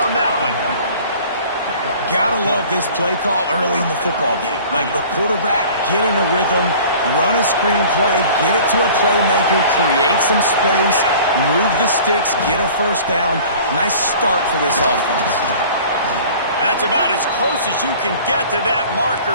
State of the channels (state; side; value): inverted; both; correlation -0.46